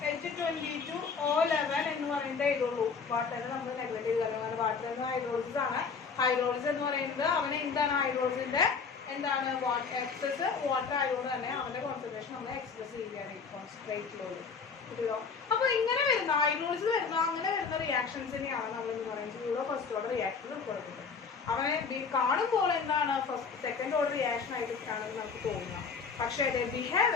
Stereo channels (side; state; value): right; quieter; 5.5 dB